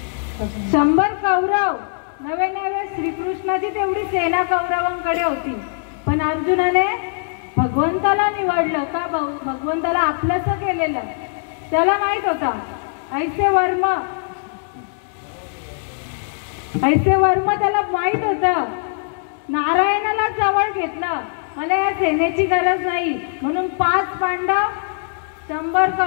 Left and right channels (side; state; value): right; silent; digital silence